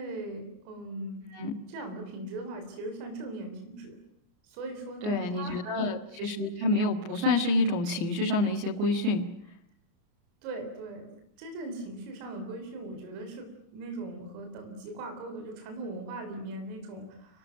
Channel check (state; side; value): late; left; 33 ms